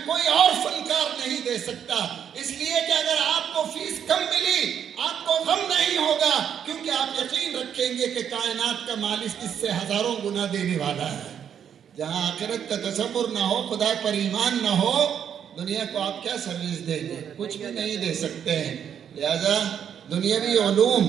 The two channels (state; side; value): quieter; left; 8.6 dB